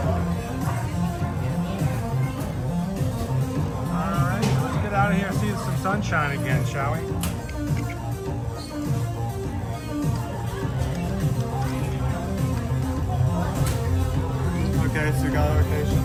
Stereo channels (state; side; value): identical; both; correlation 1.00